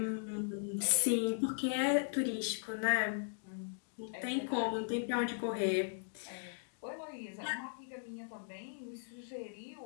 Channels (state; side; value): silent; right; digital silence